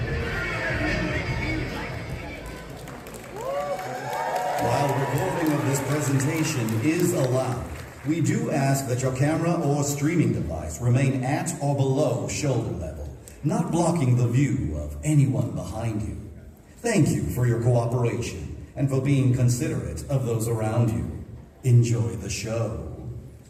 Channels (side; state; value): both; identical; correlation 1.00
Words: While recording of this presentation is allowed, we do ask that your camera or streaming device remain at or below shoulder level, not blocking the view of anyone behind you. Thank you for your cooperation and for being considerate of those around you. Enjoy the show.